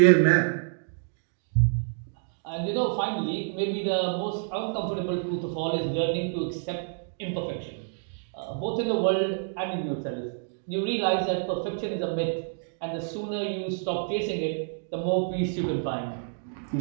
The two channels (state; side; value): silent; left; digital silence